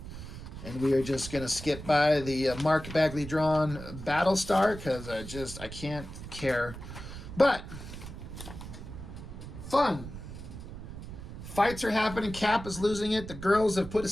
And we are just going to skip by the Mark Bagley drawn Battlestar because I can't care. But, fun. Fights are happening. Cap is losing it. The girls have put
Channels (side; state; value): right; noise; rumble, 11 dB below the sound